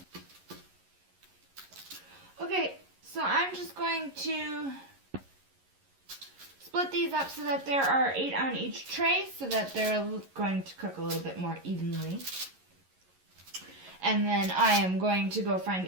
Okay, so I'm just going to split these up so that there are 8 on each tray, so that they're going to cook a little bit more evenly. And then I am going to go find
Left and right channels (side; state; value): left; late; 11 ms